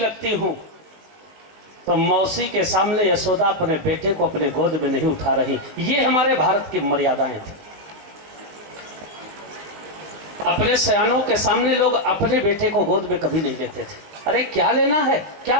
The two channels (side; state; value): left; late; 19 ms